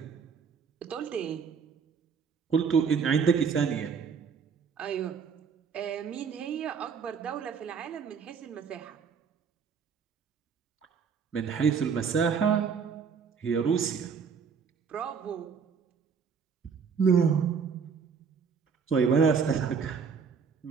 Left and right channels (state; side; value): quieter; left; 6.2 dB